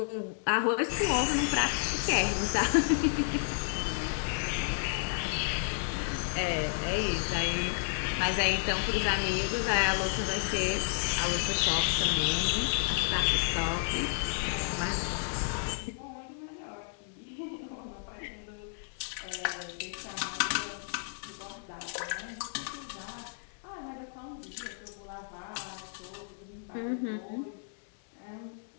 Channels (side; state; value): right; silent; digital silence